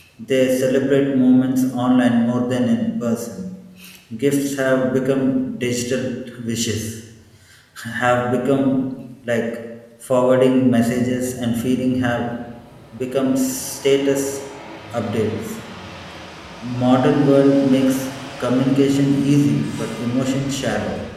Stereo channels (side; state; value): both; identical; correlation 1.00